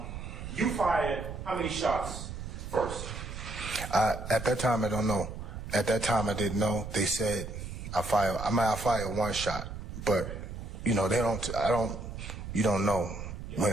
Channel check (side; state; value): right; noise; rumble, 8 dB below the sound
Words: you fired how many shots first? At that time, I don't know. At that time, I didn't know. They said I fired 1 shot, but you know you don't know